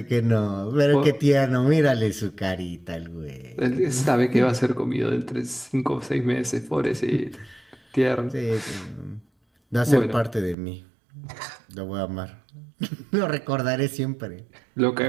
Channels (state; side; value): drops out; left; at 10.6 s